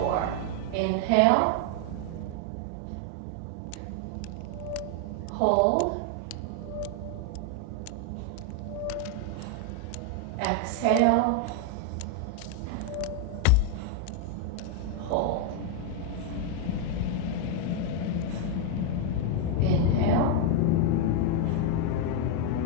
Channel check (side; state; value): both; different; correlation 0.01